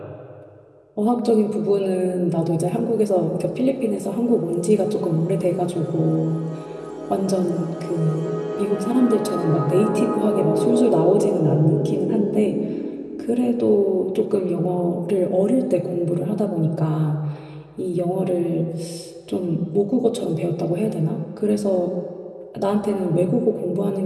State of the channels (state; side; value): identical; both; correlation 1.00